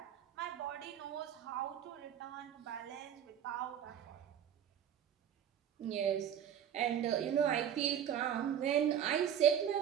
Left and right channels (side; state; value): left; quieter; 9.5 dB